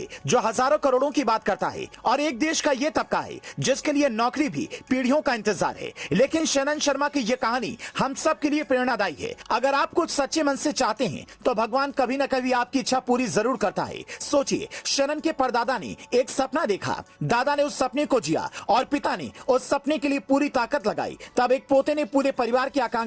जो हजारों करोड़ों की बात करता है और एक देश का ये तबका है जिसके लिए नौकरी भी पीढ़ियों का इंतजार है। लेकिन शनन शर्मा की ये कहानी हम सब के लिए प्रेरणादायी है। अगर आप कुछ सच्चे मन से चाहते हैं तो भगवान कभी न कभी आपकी इच्छा पूरी जरूर करता है। सोचिए, शनन के परदादा ने एक सपना देखा, दादा ने उस सपने को जिया और पिता ने उस सपने के लिए पूरी ताकत लगाई। तब एक पोते ने पूरे परिवार की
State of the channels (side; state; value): both; identical; correlation 1.00